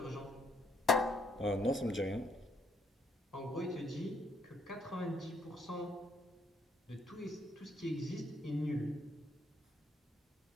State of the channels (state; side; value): normal; both; correlation 0.70